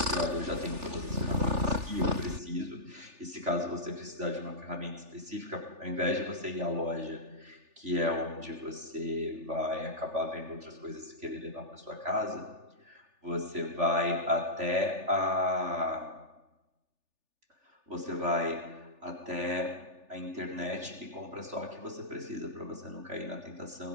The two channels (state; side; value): late; left; 3.4 ms